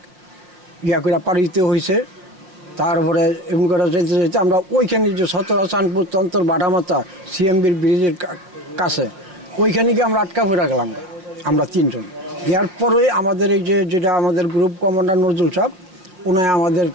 করে পাড়ি দিতে হয়েছে। তারপরে এমন করে যেতে যেতে আমরা ওইখানে যে সতরা, চাঁদপুর, তন্তর, বাটামাথা সিএমবির ব্রিজের কাছে, ওইখানে গিয়ে আমরা আটকা পড়ে গেলাম আমরা 3 জন। এরপরে আমাদের এই যেটা আমাদের গ্রুপ কমান্ডার নজরুল সাহেব, উনি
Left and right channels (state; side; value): late; left; 5.5 ms